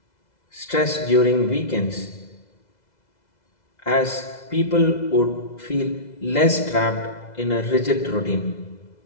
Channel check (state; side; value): late; right; 2.0 ms